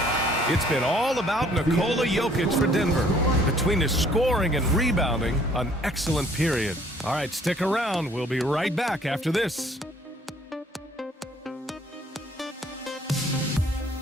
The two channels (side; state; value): both; normal; correlation 0.60